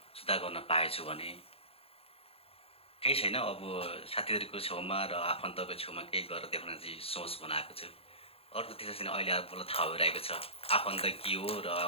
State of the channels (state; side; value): late; right; 0.28 ms